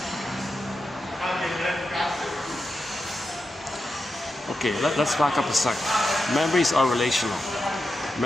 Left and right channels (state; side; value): normal; both; correlation 0.89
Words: Okay, let's back up a sec. Memories are relational.